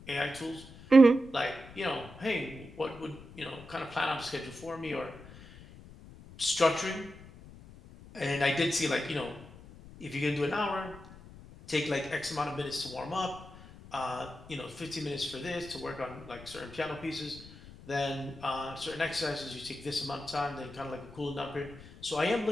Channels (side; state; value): left; noise; rumble, 18 dB below the sound